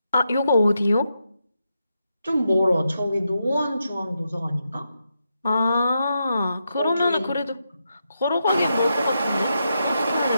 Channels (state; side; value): inverted; both; correlation -0.84